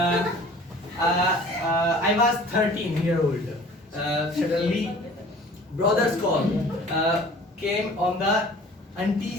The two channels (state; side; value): normal; both; correlation 0.47